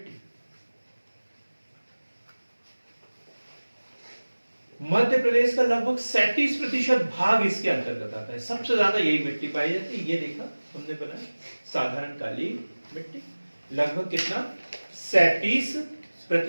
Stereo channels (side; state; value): both; inverted; correlation -1.00